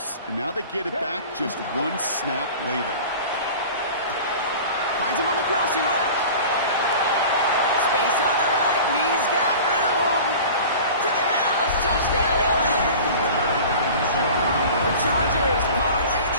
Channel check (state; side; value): inverted; both; correlation -0.39